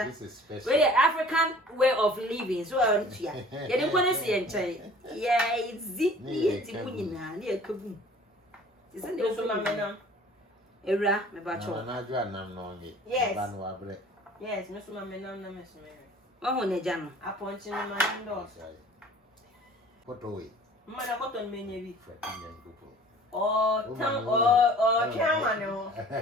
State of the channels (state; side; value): normal; both; correlation 0.48